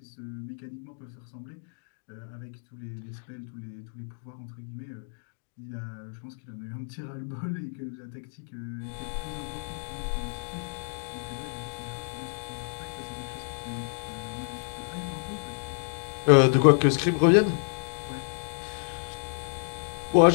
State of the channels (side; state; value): right; silent; digital silence